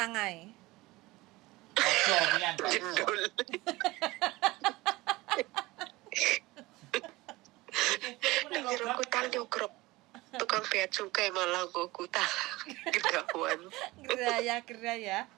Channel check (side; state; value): left; quieter; 20.4 dB